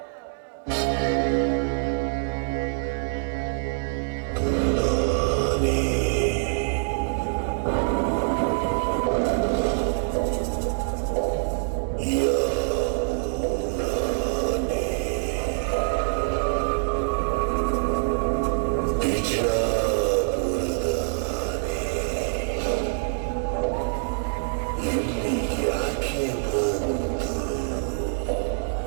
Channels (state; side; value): silent; left; digital silence